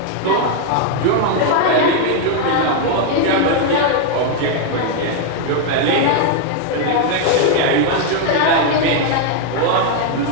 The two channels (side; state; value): both; different; correlation 0.00